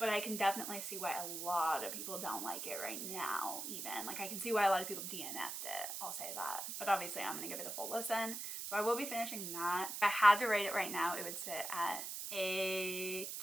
I can definitely see why a lot of people don't like it right now, even. Like, I can see why a lot of people DNF'd it, I'll say that. But obviously, I'm gonna give it a full listen. So I will be finishing that. If I had to rate it right now, it would sit at a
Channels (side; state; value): right; noise; hiss, 5 dB below the sound